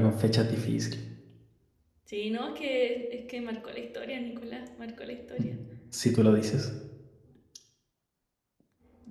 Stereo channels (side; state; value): both; identical; correlation 1.00